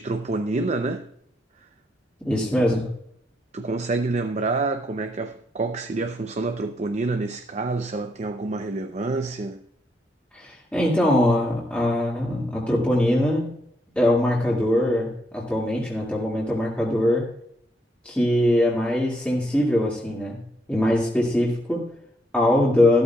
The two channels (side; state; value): both; normal; correlation 0.76